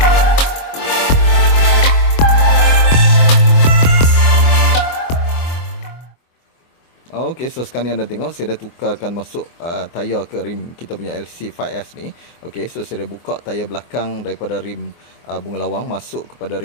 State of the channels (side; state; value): right; late; 24 ms